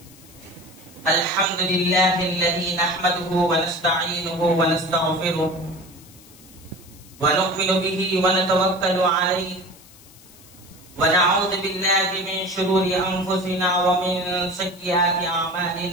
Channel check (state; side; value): noise; left; hiss, 23 dB below the sound